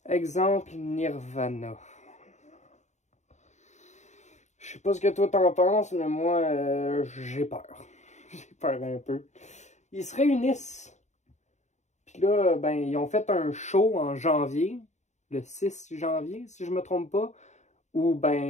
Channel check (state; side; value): late; right; 0.34 ms